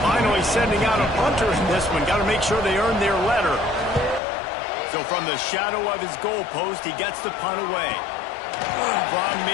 Finally sending out a punter in this one. Got to make sure they earn their letter. So from the shadow of his goalpost, he gets the punt away. From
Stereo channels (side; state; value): right; drops out; at 4.2 s